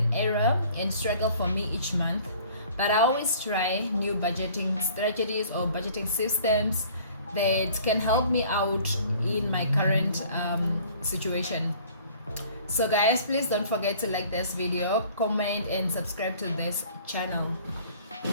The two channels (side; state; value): both; inverted; correlation -0.52